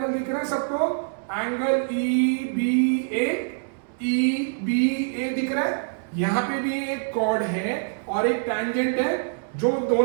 दिख रहा है सबको? एंगल EBA दिख रहा है। यहां पे भी एक कॉर्ड है और एक टैंजेंट है, जो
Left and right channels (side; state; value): left; silent; 62 dB below the other